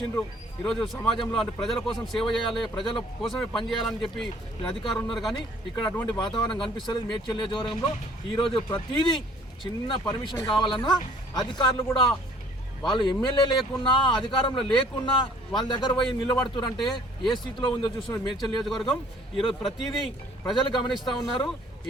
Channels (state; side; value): normal; both; correlation 0.56